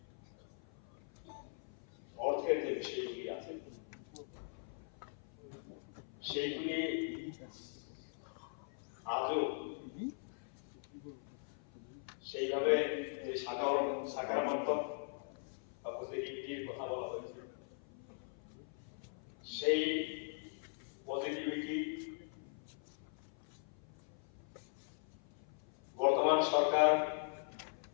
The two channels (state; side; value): silent; right; 50 dB below the other